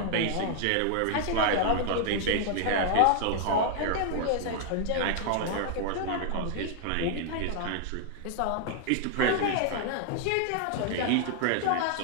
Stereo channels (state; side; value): different; both; correlation 0.00